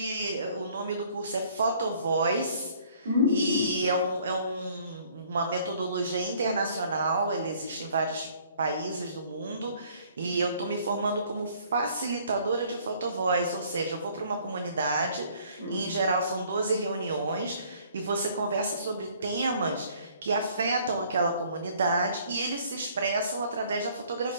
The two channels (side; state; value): both; inverted; correlation -0.59